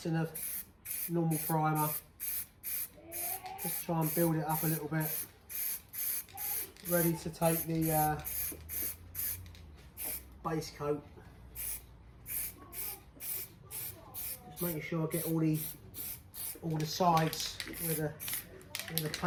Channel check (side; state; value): both; identical; correlation 1.00